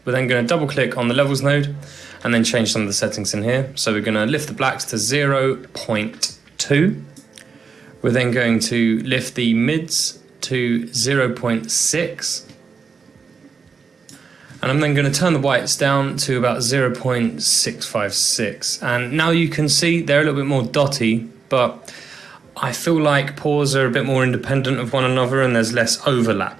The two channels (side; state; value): left; quieter; 5.4 dB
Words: We're then going to double click on the levels node and then change some of the settings in here. So we're going to lift the blacks to 0.2. We're then going to lift the mids to 0.6. And I'm then going to turn the whites down to about 0.656. And now you can see they're a little bit more dotty, but I feel like pores are a bit more independent of one another and there's less